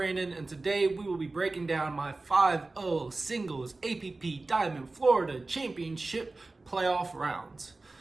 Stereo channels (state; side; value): quieter; left; 3.3 dB